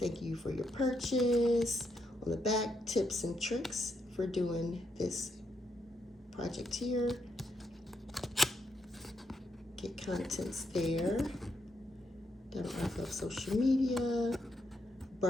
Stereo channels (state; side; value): normal; both; correlation 0.79